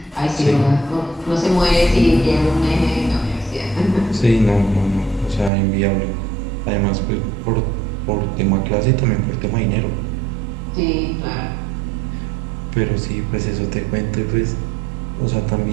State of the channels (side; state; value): left; drops out; at 5.5 s